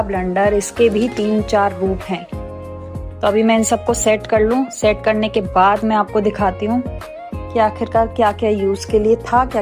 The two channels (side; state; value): both; identical; correlation 1.00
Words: ब्लंडर, इसके भी 3-4 रूप हैं। तो अभी मैं इन सबको सेट कर लूँ। सेट करने के बाद मैं आपको दिखाती हूँ कि आखिरकार क्या क्या यूज़ के लिए था, क्या